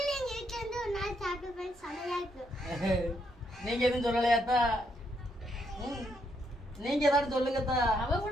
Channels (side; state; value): both; normal; correlation 0.76